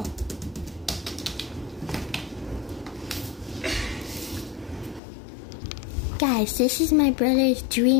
Guys, this is my brother's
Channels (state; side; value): drops out; right; at 5.0 s